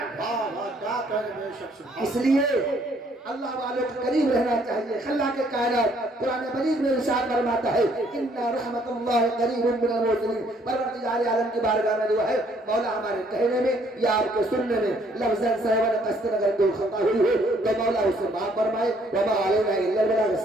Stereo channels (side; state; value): both; normal; correlation 0.65